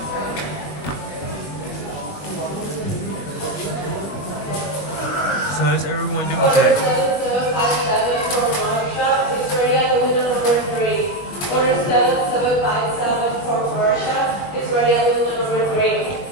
So how's everyone doing today?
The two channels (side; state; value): right; late; 21 ms